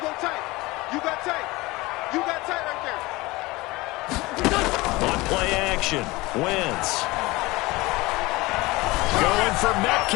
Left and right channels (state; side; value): quieter; right; 21.5 dB